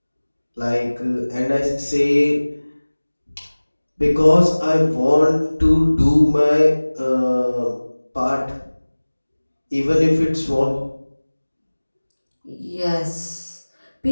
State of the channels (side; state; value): both; inverted; correlation -1.00